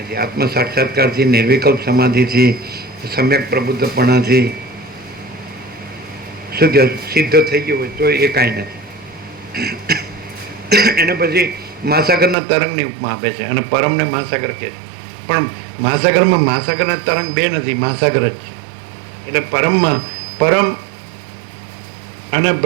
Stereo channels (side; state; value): left; drops out; at 12.4 s